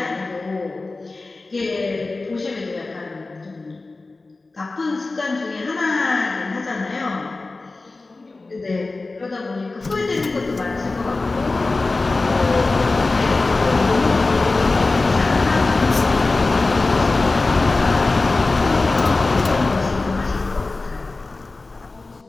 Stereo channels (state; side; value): quieter; right; 3.4 dB